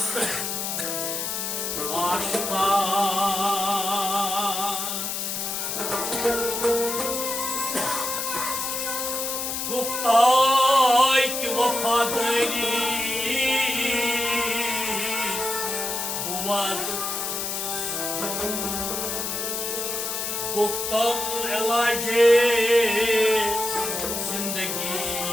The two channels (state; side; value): noise; left; hiss, 2 dB below the sound